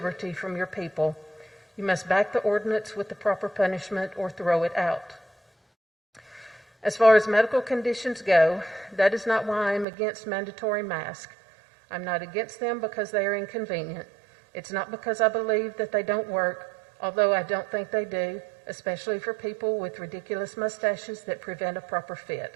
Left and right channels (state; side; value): drops out; left; at 9.9 s